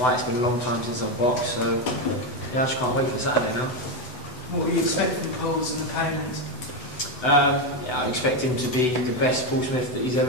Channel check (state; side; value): late; right; 8.0 ms